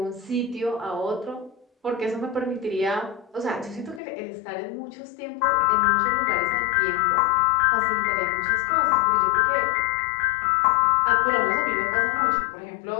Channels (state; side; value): drops out; right; at 4.0 s